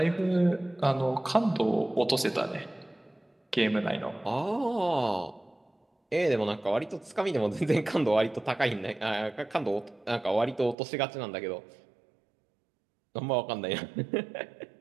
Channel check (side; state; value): left; drops out; at 10.8 s